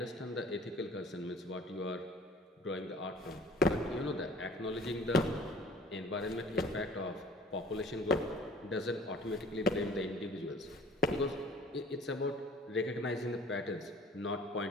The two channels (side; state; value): both; normal; correlation 0.50